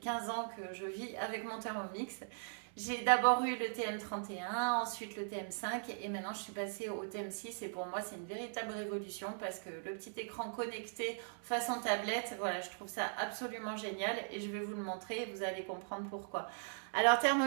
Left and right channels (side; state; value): left; silent; 51 dB below the other